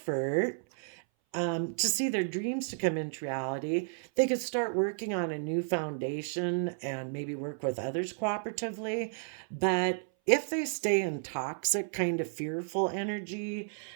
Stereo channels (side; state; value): left; silent; 56 dB below the other